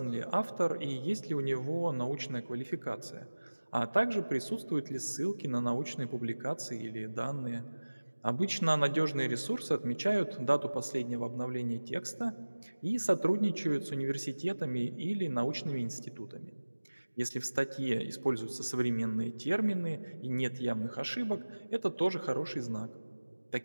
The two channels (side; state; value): both; inverted; correlation -1.00